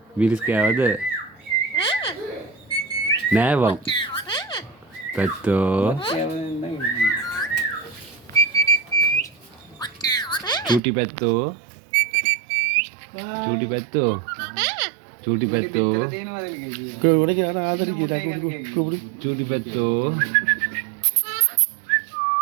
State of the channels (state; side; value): drops out; left; at 10.8 s